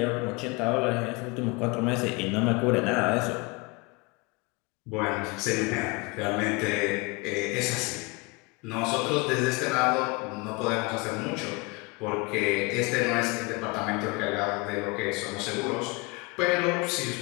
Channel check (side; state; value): right; quieter; 27.2 dB